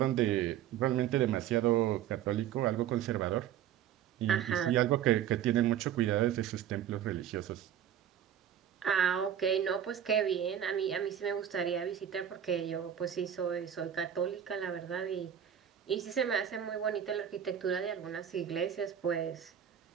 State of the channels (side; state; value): left; quieter; 9.9 dB